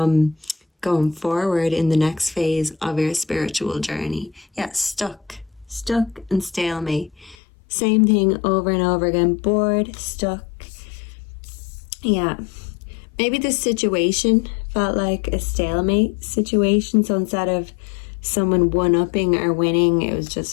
going forward in the next phase of your spiritual journey. Yeah, stuck and stalemate. Same thing over and over again. Bored, stuck. Yeah. Maybe this situation felt like a stalemate situation. So instead of someone one-upping or winning, it was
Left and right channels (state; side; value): drops out; right; at 7.4 s